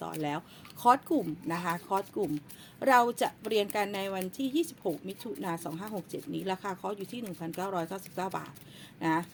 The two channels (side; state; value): both; identical; correlation 1.00